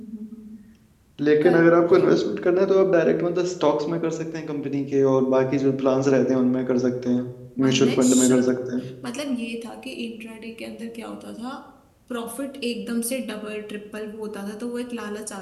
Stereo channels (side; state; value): both; identical; correlation 1.00